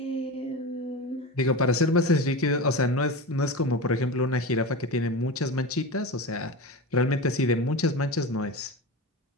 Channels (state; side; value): normal; both; correlation 0.25